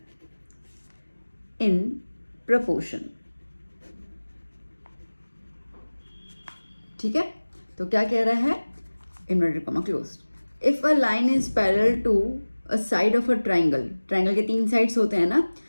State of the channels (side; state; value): both; inverted; correlation -1.00